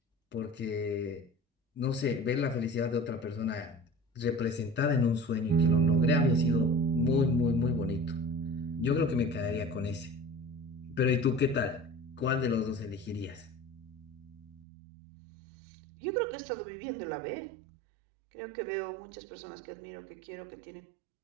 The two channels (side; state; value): left; drops out; at 14.7 s